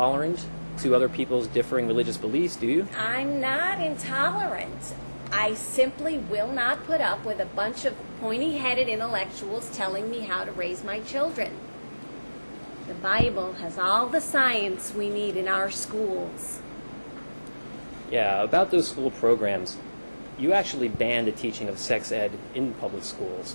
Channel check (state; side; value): inverted; both; correlation -1.00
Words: to other people's differing religious beliefs, do you? I'm not intolerant. I simply will not put up with a bunch of pointy-headed intellectuals telling me how to raise my children. The Bible has all the science we need in our schools. Yeah, about those school programs, you actually banned the teaching of sex ed in public